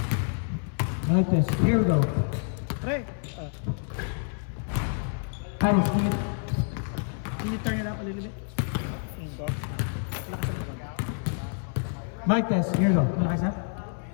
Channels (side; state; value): right; silent; 59 dB below the other